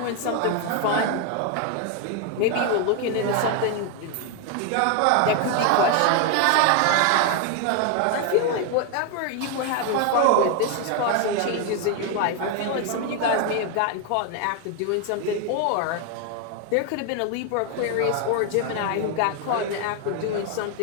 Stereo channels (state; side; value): different; both; correlation 0.01